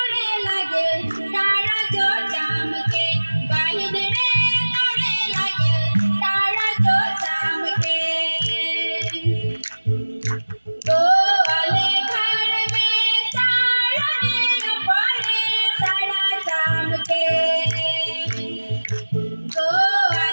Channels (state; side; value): inverted; both; correlation -1.00